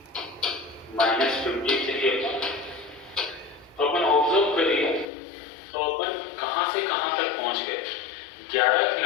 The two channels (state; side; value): drops out; right; at 5.1 s